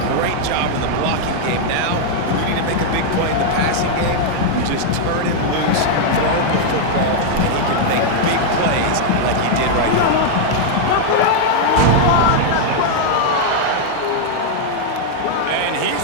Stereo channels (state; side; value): different; both; correlation 0.00